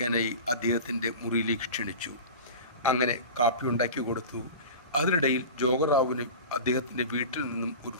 അദ്ദേഹത്തിൻ്റെ മുറിയിലേക്ക് ക്ഷണിച്ചു. അങ്ങനെ കാപ്പി ഉണ്ടാക്കി കൊടുത്തു. അതിനിടയിൽ ജോഗറാവുവിന് അദ്ദേഹത്തിൻ്റെ വീട്ടിൽ നിന്നും ഒരു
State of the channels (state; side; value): inverted; both; correlation -0.33